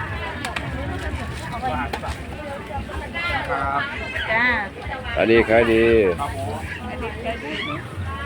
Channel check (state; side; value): identical; both; correlation 1.00